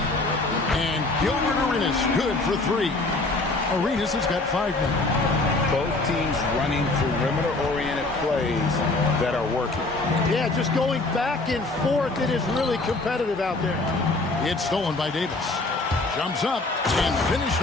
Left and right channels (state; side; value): quieter; right; 3.2 dB